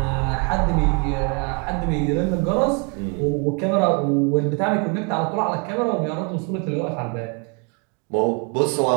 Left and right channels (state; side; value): quieter; left; 33.3 dB